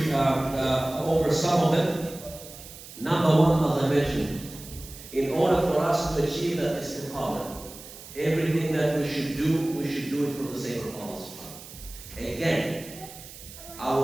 over some of them. Number one, as I mentioned, in order for us to achieve that istiqamah, everything that we should do it for the sake of Allah. Again, I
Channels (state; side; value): noise; right; hiss, 16 dB below the sound